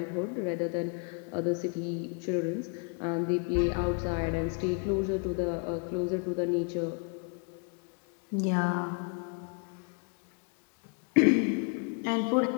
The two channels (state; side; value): quieter; right; 38.2 dB